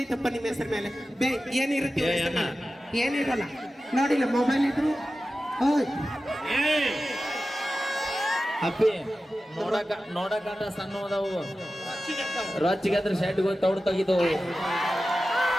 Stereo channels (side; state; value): both; normal; correlation 0.94